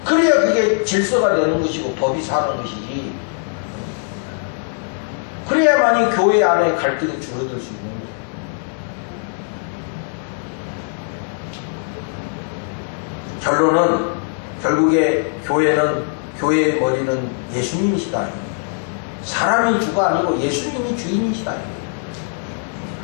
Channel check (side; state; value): right; silent; digital silence